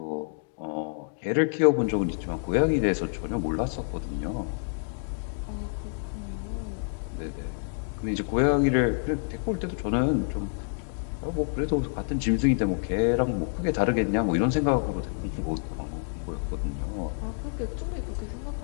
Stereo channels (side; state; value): right; silent; digital silence